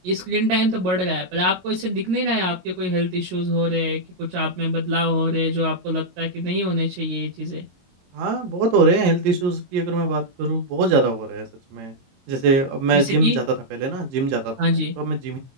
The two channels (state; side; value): late; left; 23 ms